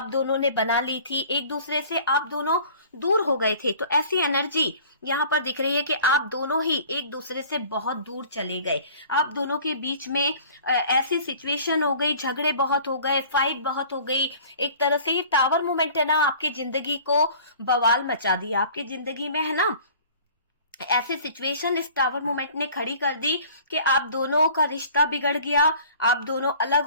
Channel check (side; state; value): both; inverted; correlation -0.48